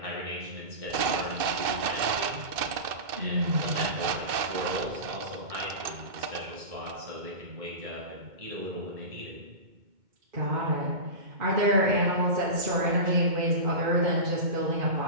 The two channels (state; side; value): late; left; 2.2 ms